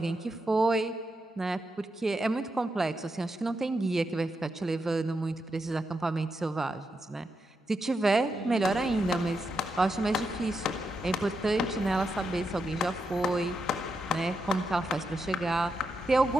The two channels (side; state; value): both; normal; correlation 0.84